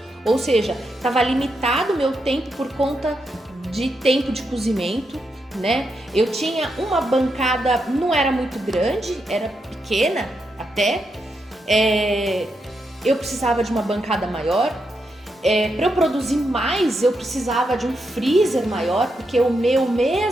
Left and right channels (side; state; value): both; normal; correlation 0.83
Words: ou seja, estava limitado o meu tempo por conta de tempo de cozimento, né? Eu tinha uma bancada, não era muito grande, era pequena até, eu precisava de uma bancada maior. Para eu produzir mais, eu precisava de um freezer maior, porque o meu,